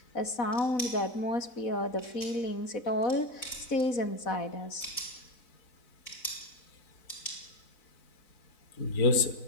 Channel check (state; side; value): late; right; 4.0 ms